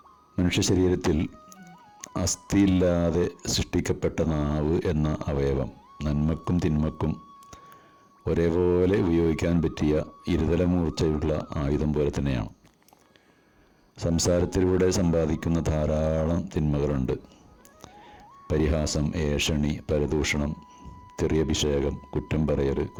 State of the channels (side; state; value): both; identical; correlation 1.00